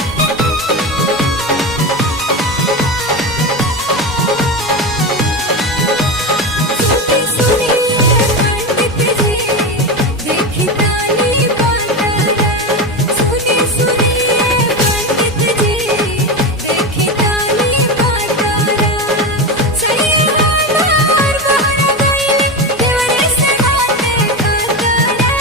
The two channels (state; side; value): normal; both; correlation 0.19